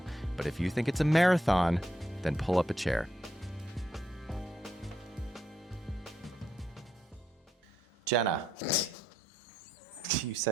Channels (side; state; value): both; normal; correlation 0.77